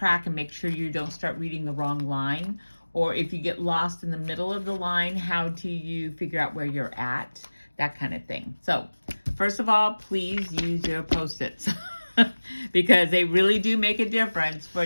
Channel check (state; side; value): inverted; both; correlation -1.00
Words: and make sure you don't start reading the wrong line, or if you get lost in the middle of the line, how do you figure out where you're at, that kind of thing. So first of all, please use your Post-its because they really do make a difference for